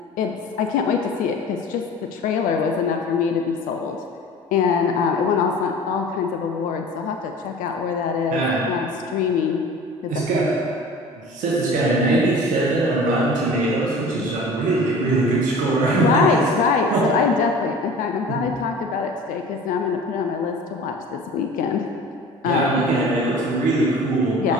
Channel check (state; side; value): normal; both; correlation 0.41